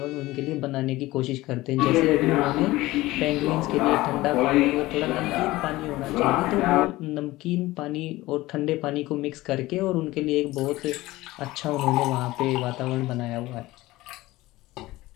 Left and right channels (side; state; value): right; quieter; 18.4 dB